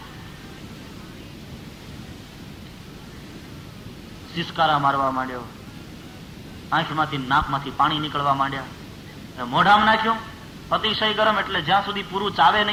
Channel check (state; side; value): identical; both; correlation 1.00